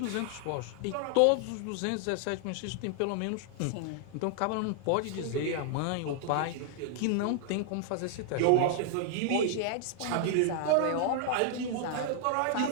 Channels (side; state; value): both; different; correlation 0.00